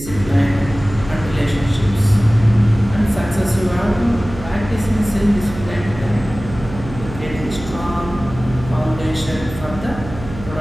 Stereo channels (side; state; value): right; noise; hum, 12 dB below the sound